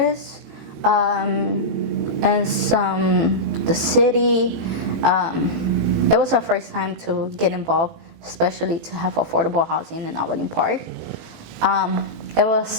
and the city. It was our first time to get involved, especially to have affordable housing in Albany Park. It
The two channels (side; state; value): left; late; 18 ms